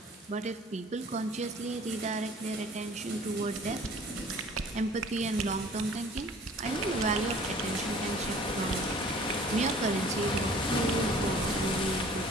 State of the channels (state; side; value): normal; both; correlation 0.50